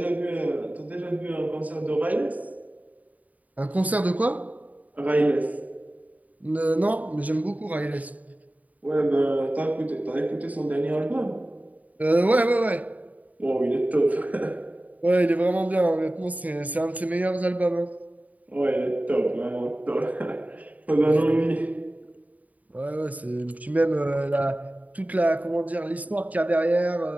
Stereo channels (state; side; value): late; left; 0.073 ms